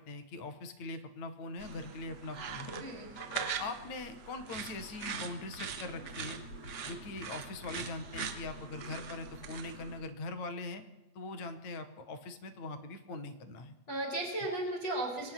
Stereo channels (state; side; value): late; right; 8.1 ms